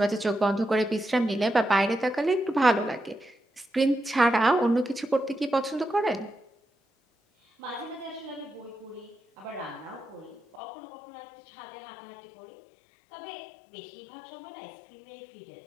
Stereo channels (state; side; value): drops out; right; at 10.6 s